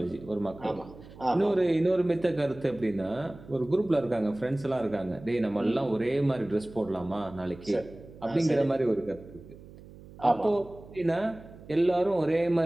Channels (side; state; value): right; noise; hum, 19 dB below the sound